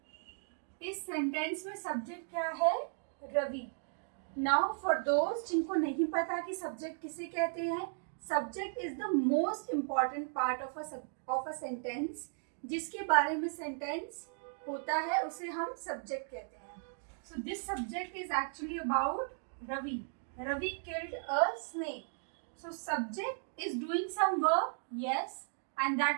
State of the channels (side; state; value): left; silent; digital silence